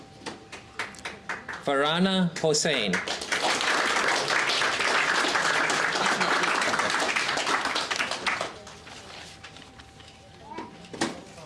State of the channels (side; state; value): both; identical; correlation 1.00